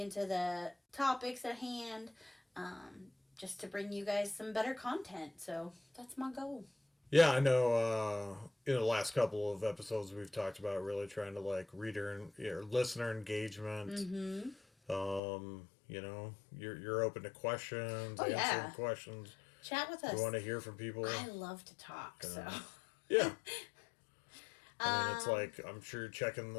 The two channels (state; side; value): drops out; right; at 15.2 s